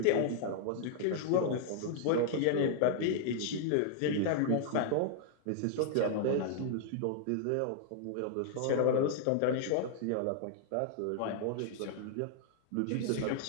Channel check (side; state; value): both; different; correlation -0.01